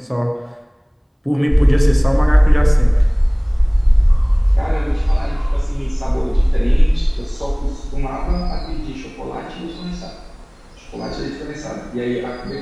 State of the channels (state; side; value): identical; both; correlation 1.00